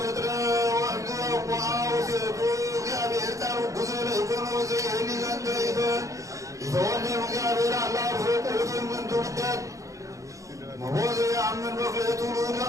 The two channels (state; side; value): late; left; 0.16 ms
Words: ወንደ ወአውሴቱ እግዚአብሔር ቃሉ ጉዘለ ይኩን ወዘይህኒ ዘንተ ይተወልድ እግዚአብሔር አላህ ፍቁትን ምን ትውደት መወዘ ያምን በክሌቱ